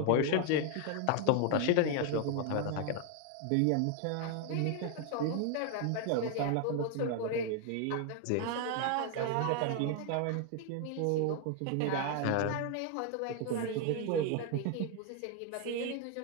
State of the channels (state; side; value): different; both; correlation 0.01